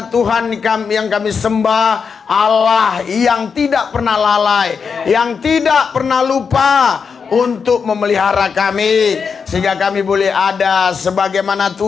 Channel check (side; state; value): right; quieter; 5.9 dB